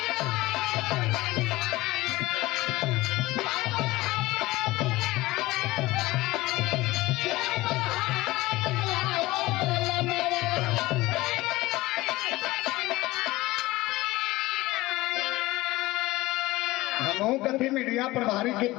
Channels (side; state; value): right; quieter; 19.1 dB